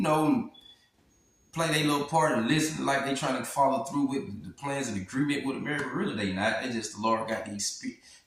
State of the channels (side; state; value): both; identical; correlation 1.00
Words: play their little part and listen like they trying to follow through with the plans and agreement with America. Really, they not. They just the Lord got